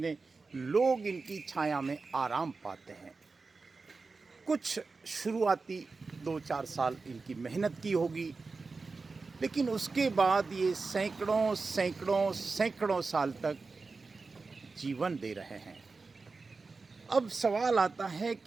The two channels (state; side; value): quieter; left; 4.1 dB